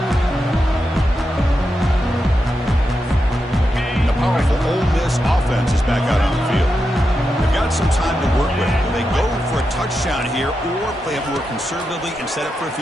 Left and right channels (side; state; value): both; normal; correlation 0.87